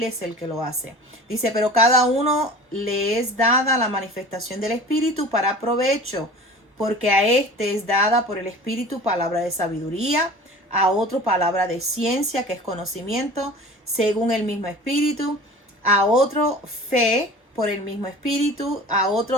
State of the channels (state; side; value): normal; both; correlation 0.40